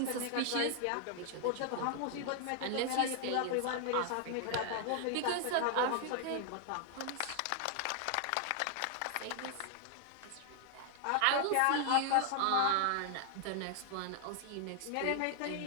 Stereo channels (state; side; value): different; both; correlation 0.00